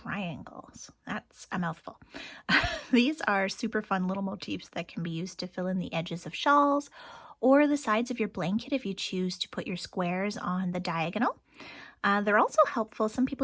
That's a mouthful. These are super fun little motifs that can be used to fill in the edges of shawls or the sides of your blanket if you choose to put your squares on the diagonal. They're also helpful. Some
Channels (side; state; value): both; identical; correlation 1.00